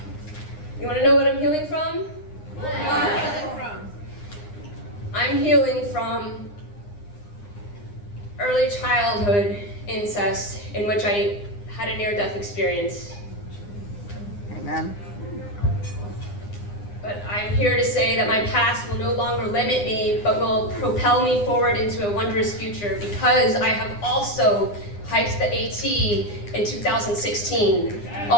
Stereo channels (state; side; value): late; right; 9.8 ms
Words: You want to know what I'm healing from? What are you healing from? I'm healing from early childhood incest in which I had a near-death experience. Amen. But I'm here to say that my past will no longer limit me, but will propel me forward into a wondrous future, because I have also hiked the AT in 2016,